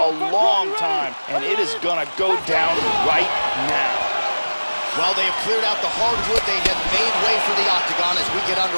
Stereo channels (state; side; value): inverted; both; correlation -1.00